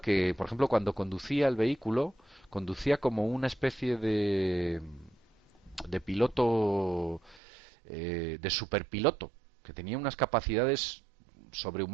por ejemplo, cuando conducía el vehículo, conducía como una especie de piloto, de superpiloto, que tenía unas capacidades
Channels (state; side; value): drops out; left; at 7.4 s